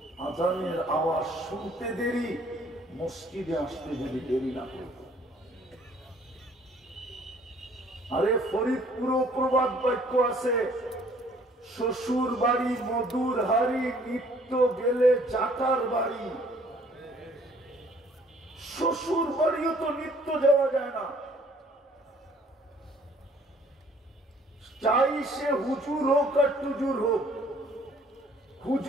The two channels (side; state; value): both; normal; correlation 0.58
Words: আজানের আওয়াজ শুনতে দেরি, মসজিদে আসতে যদি দেরি না করত। আরে ফরিদপুরও প্রবাদ বাক্য আছে, শ্বশুর বাড়ি মধুর হাড়ি, নিত্য গেলে চাটার বাড়ি। শ্বশুর বাড়িও তো নিত্য যাওয়া যায় না, চাই সে হুজুর হোক আর টুজুর হোক।